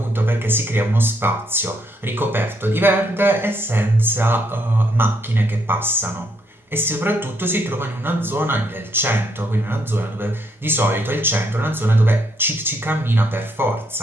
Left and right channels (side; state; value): both; normal; correlation 0.74